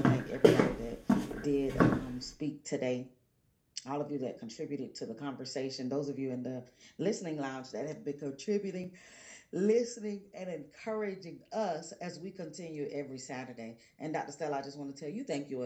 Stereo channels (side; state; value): both; identical; correlation 1.00